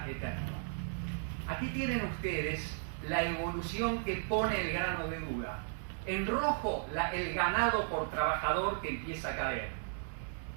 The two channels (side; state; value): left; silent; digital silence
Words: eterno. Aquí tienen ustedes la evolución que pone el grano de duda. En rojo, el ganado por trabajador que empieza a caer.